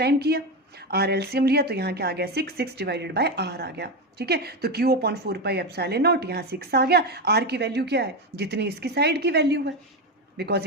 किया, r एलसीएम लिया तो यहाँ क्या आ गया, 6 डिवाइडेड बाय r आ गया, ठीक है। तो Q/4πε0, यहाँ 6 आ गया, r की वैल्यू क्या है, जितनी इसकी साइड की वैल्यू है, बिकॉज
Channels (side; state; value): both; normal; correlation 0.14